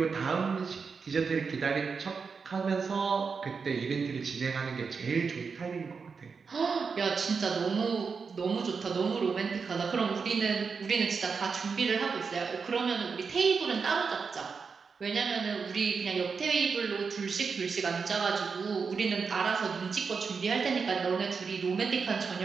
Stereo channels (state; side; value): quieter; left; 5.4 dB